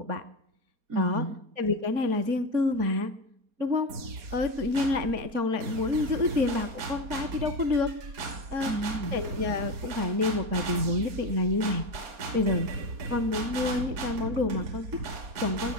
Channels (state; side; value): late; left; 4.3 ms